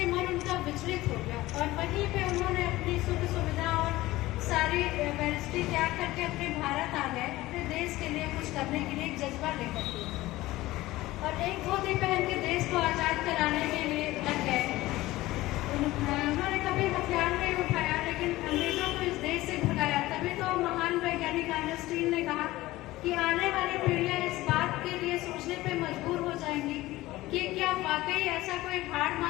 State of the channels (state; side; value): quieter; right; 17.8 dB